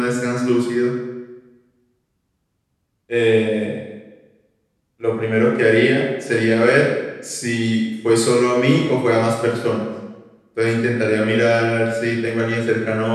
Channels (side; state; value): both; identical; correlation 1.00